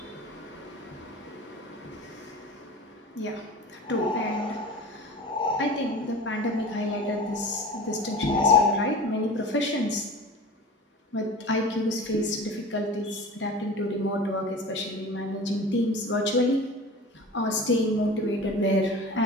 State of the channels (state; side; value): normal; both; correlation 0.36